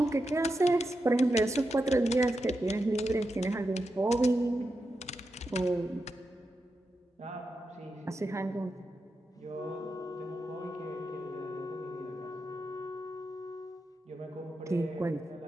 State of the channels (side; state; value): both; normal; correlation 0.88